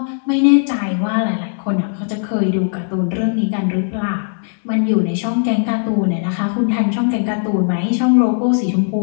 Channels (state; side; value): silent; right; digital silence